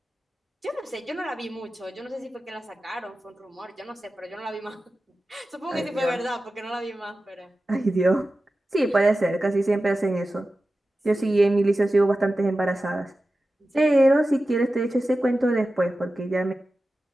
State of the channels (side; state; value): both; normal; correlation 0.94